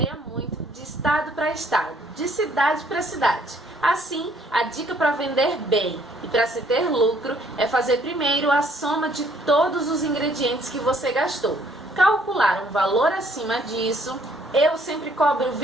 muito de estado para estado, de cidade para cidade. Assim, a dica para vender bem e para se ter lucro é fazer primeiro a soma de todos os ingredientes que você gastou. Calcular um valor acima disso, eu sempre cobro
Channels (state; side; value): normal; both; correlation 0.63